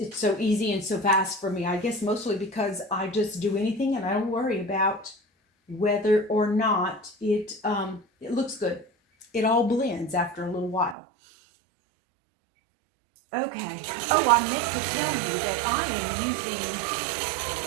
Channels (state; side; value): drops out; left; at 11.0 s